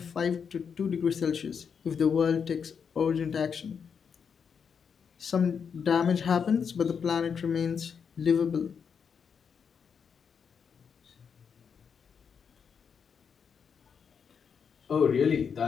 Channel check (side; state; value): right; quieter; 6.6 dB